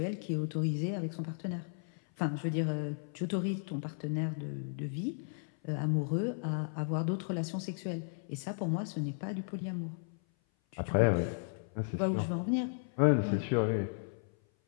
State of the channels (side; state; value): right; silent; 55 dB below the other